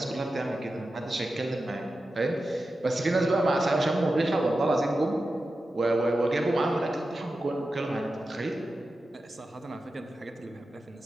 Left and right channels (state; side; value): normal; both; correlation 0.92